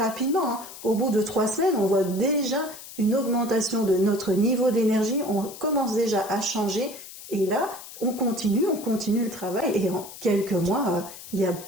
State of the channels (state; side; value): noise; left; hiss, 15 dB below the sound